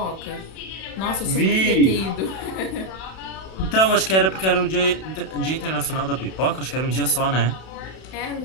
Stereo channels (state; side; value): late; right; 32 ms